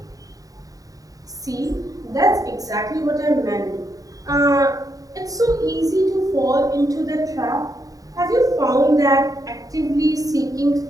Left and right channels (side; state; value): left; late; 0.17 ms